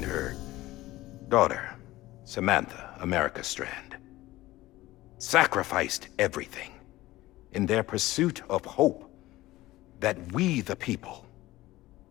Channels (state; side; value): quieter; right; 17.5 dB